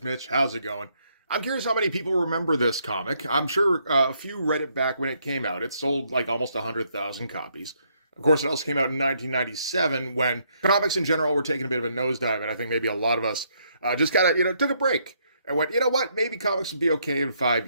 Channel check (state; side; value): inverted; both; correlation -0.72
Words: Mitch. How's it going? I'm curious how many people remember this comic. I'm sure a few read it back when it came out. It sold like almost 100,000 copies. Of course, it also came out in 1997 when comics in general were taking a bit of a nosedive, and I think maybe a lot of us just kind of, took a break and went, you know what, maybe comics would be okay in 5